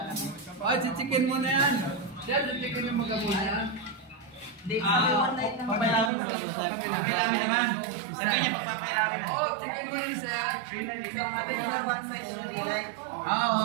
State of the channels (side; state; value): left; drops out; at 6.1 s